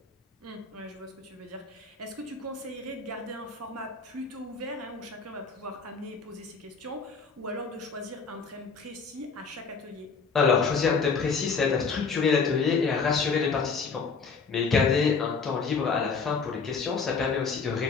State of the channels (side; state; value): right; quieter; 5.0 dB